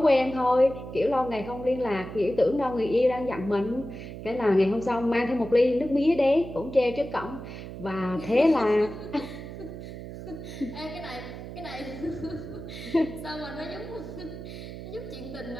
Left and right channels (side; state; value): right; noise; hum, 10 dB below the sound